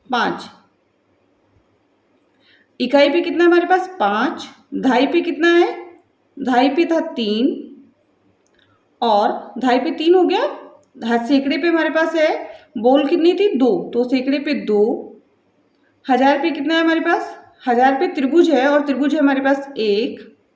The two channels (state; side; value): identical; both; correlation 1.00